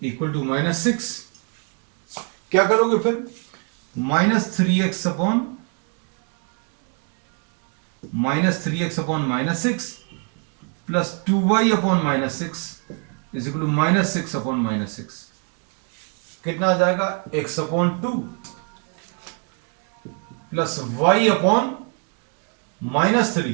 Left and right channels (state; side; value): quieter; left; 36.7 dB